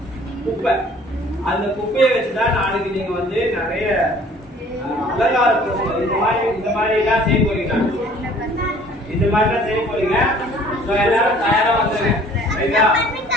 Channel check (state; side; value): normal; both; correlation 0.53